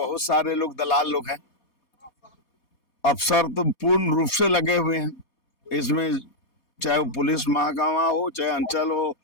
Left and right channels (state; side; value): late; right; 4.2 ms